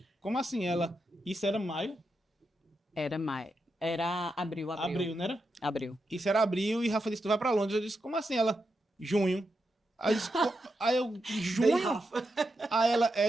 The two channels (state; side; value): normal; both; correlation 0.86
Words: como assim? Ela, isso era maio? Era maio. Era abril. Abril, não era? Abril. Isso era abril e Rafa disse: tu vai para Londres. Eu disse: como assim? Ela, junho. Aí eu, disse, aí eu Bem, junho? Rafa. Aí ela,